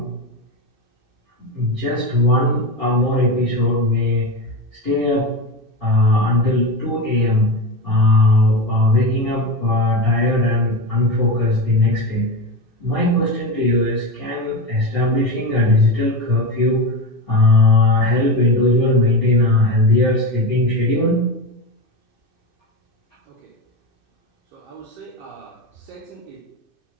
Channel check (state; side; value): late; left; 2.6 ms